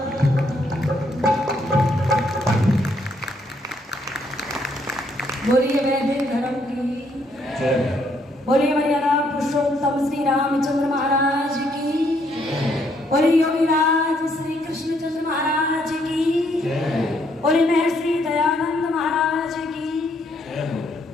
बोलिए वैदिक धर्म की जय। बोलिए मर्यादा पुरुषोत्तम श्री रामचंद्र महाराज की। बोलिए योगीराज श्री कृष्णचंद्र महाराज की। बोले महर्षि दयानंद महाराज की।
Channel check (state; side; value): normal; both; correlation 0.71